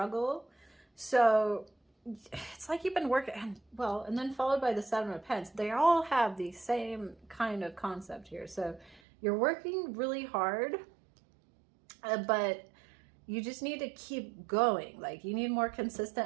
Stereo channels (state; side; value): drops out; left; at 9.0 s